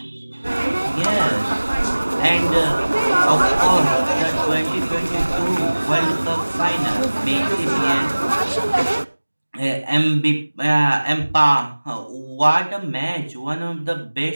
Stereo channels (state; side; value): inverted; both; correlation -1.00